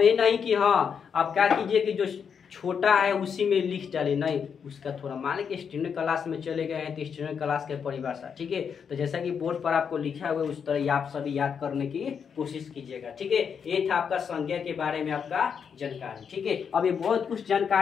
ये नहीं कि हाँ आप क्या कीजिए कि जो छोटा है उसी में लिख डाले, नहीं, उसका थोड़ा मान लीजिए स्टैंडर्ड क्लास में चले गए हैं तो स्टैंडर्ड क्लास के परिभाषा। ठीक है, तो जैसा कि बोर्ड पर आपको लिखा हुआ है उस तरह आप सभी याद करने की कोशिश कीजिएगा। ठीक है, ये था आपका संज्ञा के बारे में आपका जानकारी। ठीक है, अब ये बहुत कुछ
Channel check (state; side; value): quieter; right; 6.9 dB